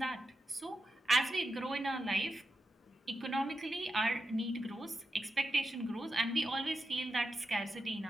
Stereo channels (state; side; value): normal; both; correlation 0.88